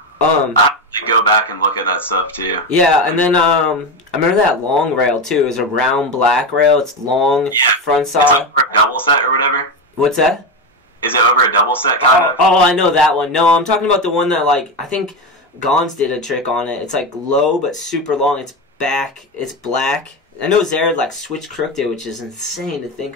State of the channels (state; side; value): normal; both; correlation 0.16